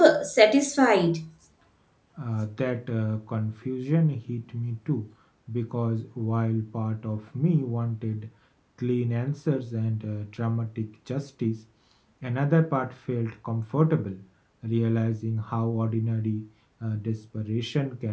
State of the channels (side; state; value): both; identical; correlation 1.00